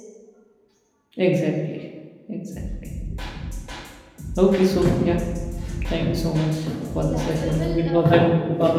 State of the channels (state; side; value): identical; both; correlation 1.00